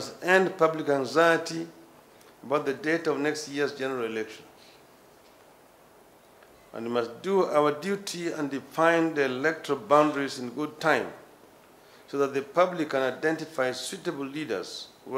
end public anxiety about the date of next year's general elections. And we must do our duty and define the electoral boundaries in good time so that the public can identify suitable leaders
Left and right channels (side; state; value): both; identical; correlation 1.00